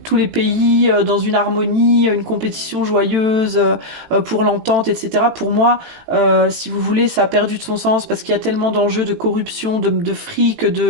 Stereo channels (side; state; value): left; late; 18 ms